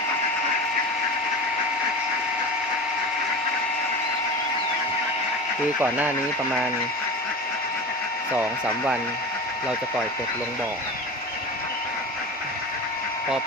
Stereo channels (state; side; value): normal; both; correlation 0.30